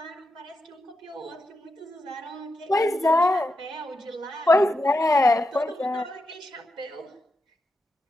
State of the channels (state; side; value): normal; both; correlation 0.86